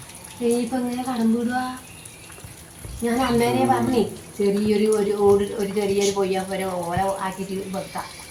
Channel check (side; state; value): both; identical; correlation 1.00